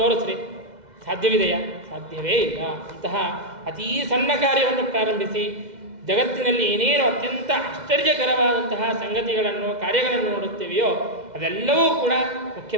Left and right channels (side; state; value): left; late; 2.0 ms